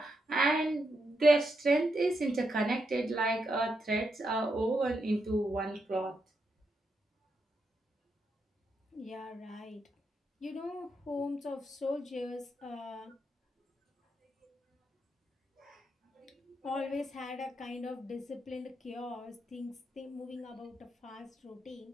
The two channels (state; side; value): normal; both; correlation 0.82